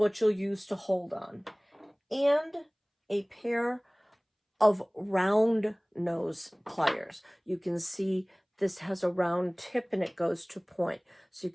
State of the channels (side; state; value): both; identical; correlation 1.00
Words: you'll use to hold on. And a pair of round nose pliers. You can see this has a round tip and it goes to point. So you